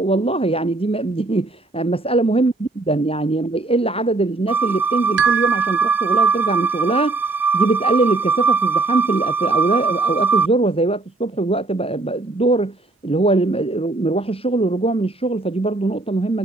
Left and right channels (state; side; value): quieter; left; 3.1 dB